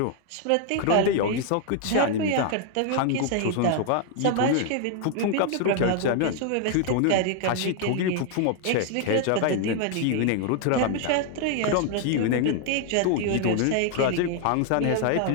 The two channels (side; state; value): both; different; correlation 0.00